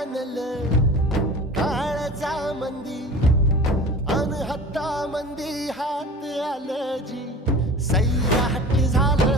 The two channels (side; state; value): both; normal; correlation 0.38